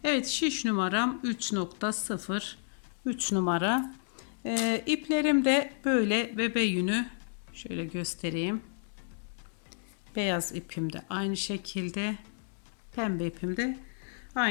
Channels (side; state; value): right; silent; digital silence